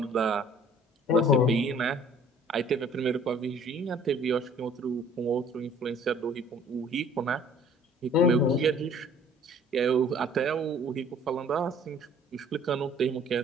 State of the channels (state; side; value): normal; both; correlation 0.53